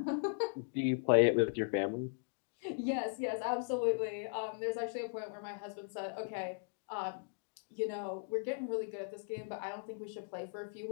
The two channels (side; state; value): right; silent; digital silence